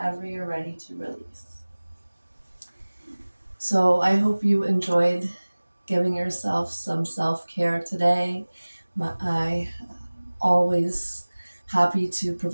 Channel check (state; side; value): inverted; both; correlation -1.00